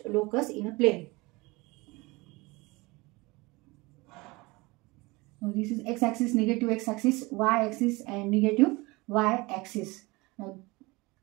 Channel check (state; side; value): quieter; left; 23.6 dB